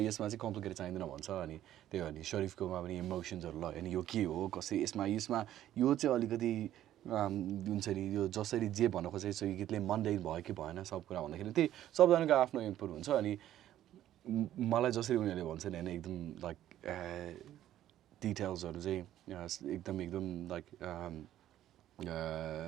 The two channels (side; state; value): left; quieter; 12.5 dB